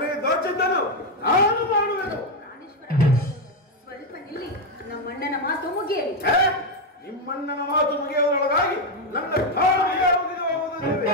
ದೋಚಿದ್ದನು ನಾನು ಮಾಡುವೆನು. ಸ್ವಲ್ಪ ನಿಲ್ಲಿ, ನಮ್ಮಣ್ಣನ ಮಾತು ಮುಗಿಯಲಿ. ನಿಮ್ಮಣ್ಣನ ಮಾತು ಮುಗಿಯುವುದರೊಳಗಾಗಿ ನನ್ನ ಕಾಲಿಗೆ ಮುಗಿದು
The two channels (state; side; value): normal; both; correlation 0.05